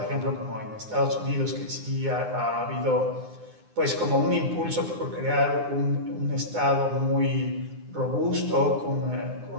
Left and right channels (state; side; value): late; left; 9.7 ms